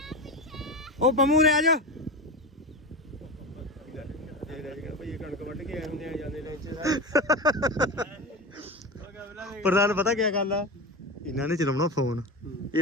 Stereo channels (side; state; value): both; normal; correlation 0.23